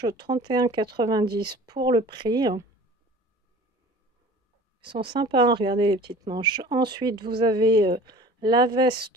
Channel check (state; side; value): normal; both; correlation 0.44